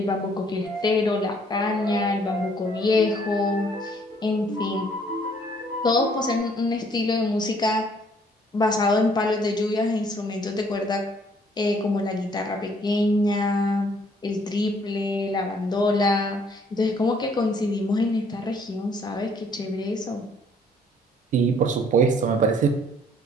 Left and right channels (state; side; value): normal; both; correlation 0.62